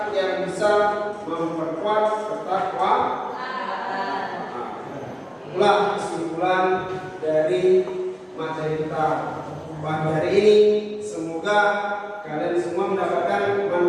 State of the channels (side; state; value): both; identical; correlation 1.00